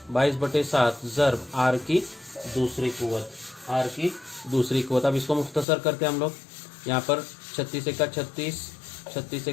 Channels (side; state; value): right; drops out; at 5.7 s